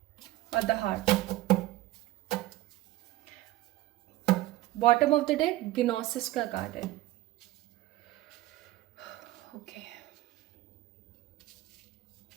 और the heart. Bottom of the deck gnosis का कार्ड है। ओके,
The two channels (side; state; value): left; quieter; 16.4 dB